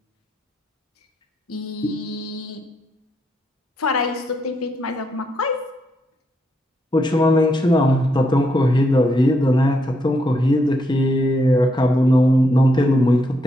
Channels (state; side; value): normal; both; correlation 0.78